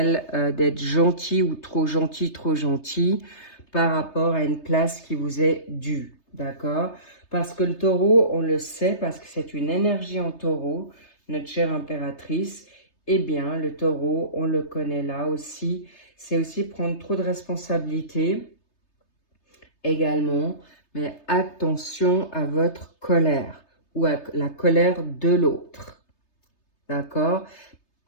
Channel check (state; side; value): late; right; 3.3 ms